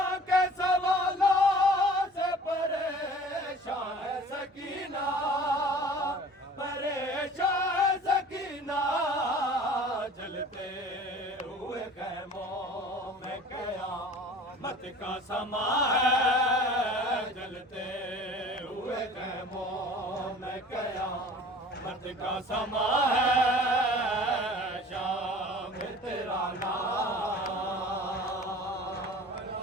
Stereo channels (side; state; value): both; normal; correlation 0.45